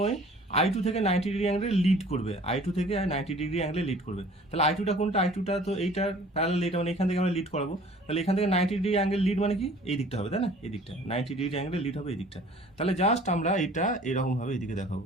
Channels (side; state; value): both; normal; correlation 0.50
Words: I2 থেকে 90 ডিগ্রি অ্যাঙ্গেলে লিড করবে, I2 থেকে 90 ডিগ্রি অ্যাঙ্গেলে লিড করবে। তাহলে I2টা কোনটা, I2টা তো এইটার প্যারালাল, এটা মানে এখান থেকে আমরা লিড করাবো। তাহলে এখান থেকে 90 ডিগ্রি অ্যাঙ্গেল লিড মানে কি, এই দিকটা হবে, তাই না, এই দিকটা 90 ডিগ্রি অ্যাঙ্গেলে লিড হবে এই দিকটা। তাহলে জাস্ট আমরা এটা এরকম ভাবে এইদিকে দেখাবো,